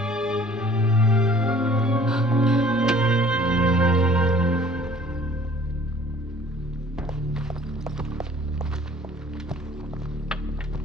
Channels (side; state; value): both; normal; correlation 0.52